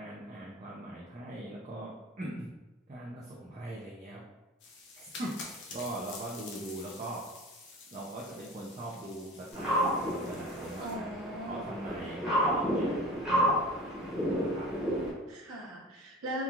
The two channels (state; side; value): normal; both; correlation 0.38